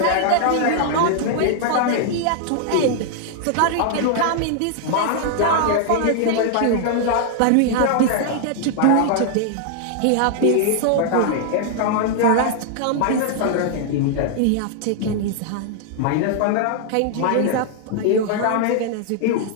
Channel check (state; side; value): different; both; correlation 0.00